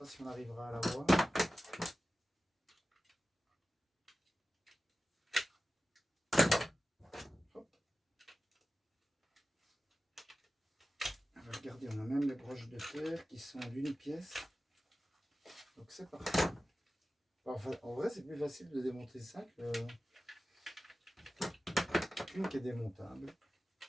si on arrivera à la voir. Hop. Alors, regardez, on a même les broches de terre qui sont d'une pièce. Donc c'est parfait. Enfin, en vrai, c'est plus facile de démonter ça qu'une qui est démontable.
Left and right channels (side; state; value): both; normal; correlation 0.95